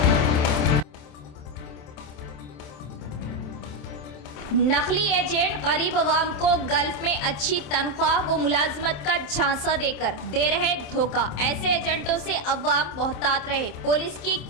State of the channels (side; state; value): right; late; 27 ms